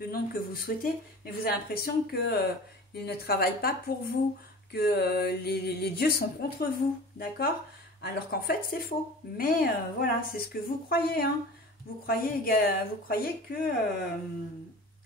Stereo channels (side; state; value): both; normal; correlation 0.38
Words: nom que vous souhaitez, mais vous avez l'impression qu'il ne travaille pas pour vous, que les dieux sont contre vous, d'accord? Alors qu'en fait, c'est faux. Mais voilà, c'est ce que vous croyez, hein. Vous croyez que vous